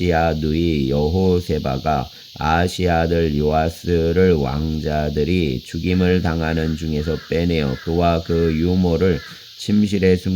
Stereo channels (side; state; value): both; identical; correlation 1.00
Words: 누이 여호세바가 아하시야 아들 요아스를 왕자들이 죽임을 당하는 중에서 빼내어 그와 그 유모를 침실에